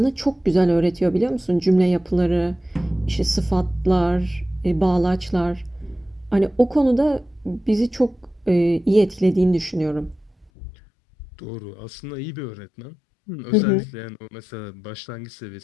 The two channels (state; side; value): drops out; right; at 10.5 s